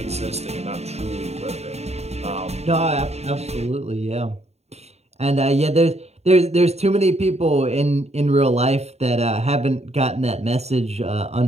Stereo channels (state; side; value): late; left; 0.31 ms